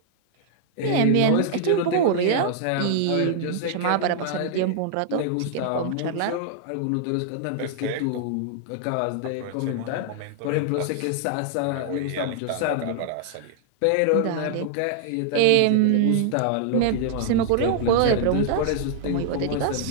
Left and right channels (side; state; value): both; different; correlation -0.01